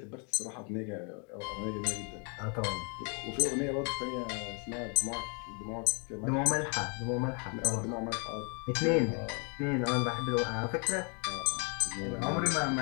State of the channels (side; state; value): right; quieter; 37.0 dB